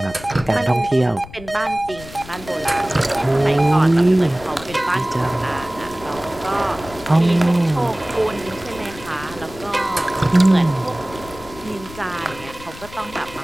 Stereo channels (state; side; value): noise; left; rumble, 17 dB below the sound